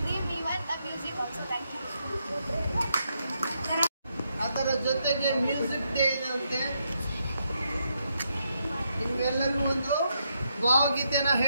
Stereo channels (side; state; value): both; inverted; correlation -0.80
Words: even the music also. Thank you. ಅದರ ಜೊತೆಗೆ ಮ್ಯೂಸಿಕ್ ಡೇ ಇರುತ್ತೆ. ನಿಮ್ಗೆಲ್ಲರಿಗೂ ಒಂದು ಭಾವಗೀತೆನ